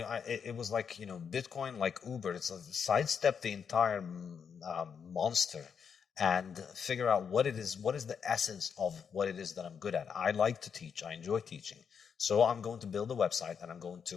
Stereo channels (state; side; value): quieter; right; 6.9 dB